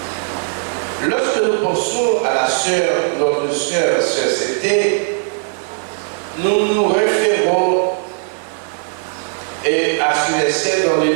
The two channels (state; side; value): silent; left; 60 dB below the other